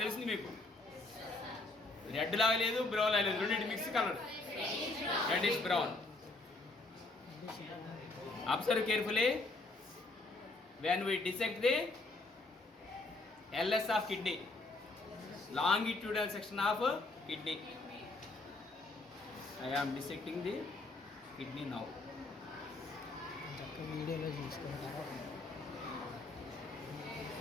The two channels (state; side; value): quieter; right; 3.1 dB